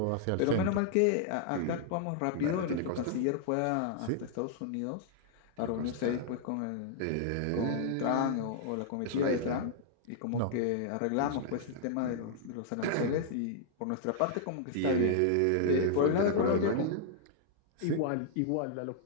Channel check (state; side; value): different; both; correlation -0.01